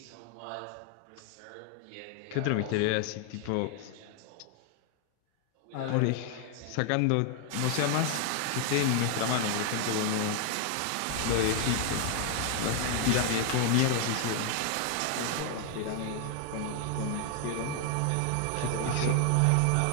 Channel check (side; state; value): both; different; correlation 0.00